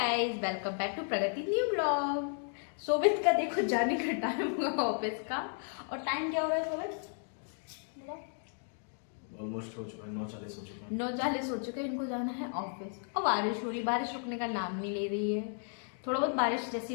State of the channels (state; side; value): silent; right; 55 dB below the other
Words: welcome back to Pragati new blog. सोबित का देखो जाने का टाइम हुआ ऑफिस का। और टाइम क्या हो रहा है सोबित? ऑलमोस्ट हो चुका है, 9:40 हो चुका है। 9:40 हो चुके हैं, इनको जाना है ऑफिस। और बारिश हो रही, बारिश रुकने का नाम नहीं ले रही है। थोड़ा बहुत बारिश